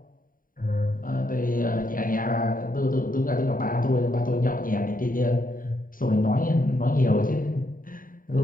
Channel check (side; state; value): right; late; 0.41 ms